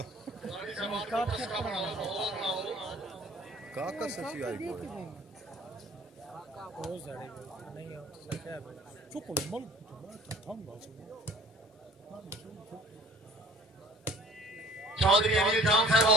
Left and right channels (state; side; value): normal; both; correlation 0.48